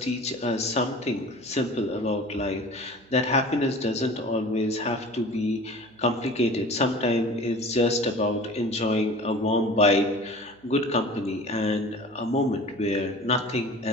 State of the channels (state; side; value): noise; right; hum, 28 dB below the sound